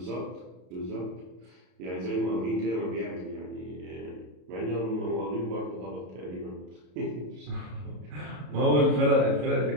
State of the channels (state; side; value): late; left; 33 ms